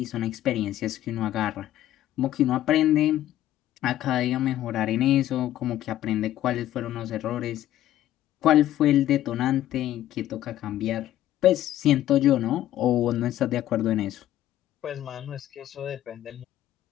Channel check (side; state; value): right; quieter; 13.2 dB